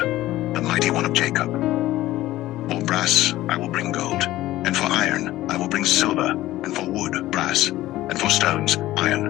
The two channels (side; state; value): right; quieter; 15.8 dB